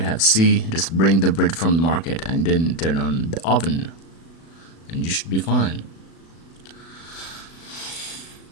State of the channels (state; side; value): late; right; 36 ms